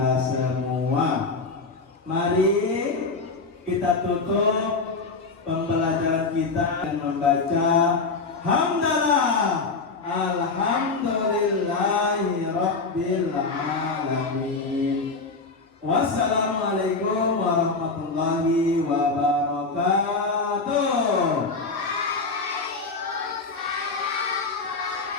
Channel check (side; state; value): right; quieter; 4.0 dB